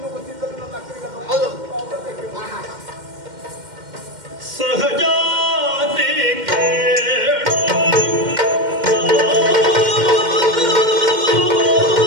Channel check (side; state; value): left; late; 2.1 ms